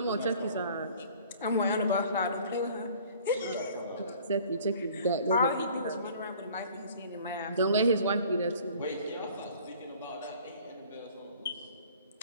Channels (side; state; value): both; inverted; correlation -0.51